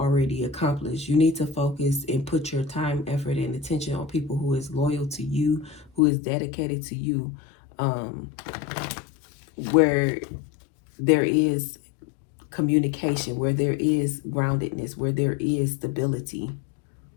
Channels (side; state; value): right; drops out; at 6.0 s